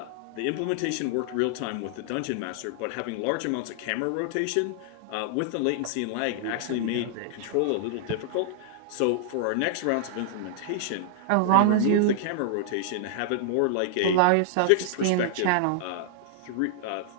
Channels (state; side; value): different; both; correlation -0.01